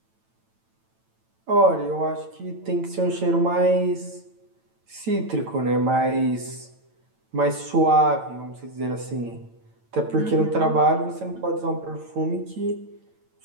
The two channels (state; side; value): late; left; 9.0 ms